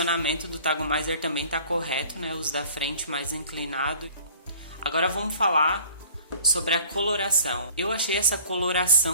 do tagomizer também está correto, né? Os da frente mais inclinado. Agora vamos falar sobre a coloração. Eu achei essa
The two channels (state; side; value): inverted; both; correlation -0.49